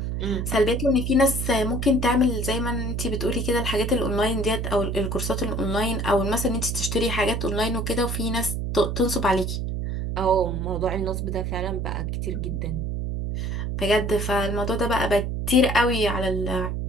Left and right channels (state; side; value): noise; right; hum, 2 dB below the sound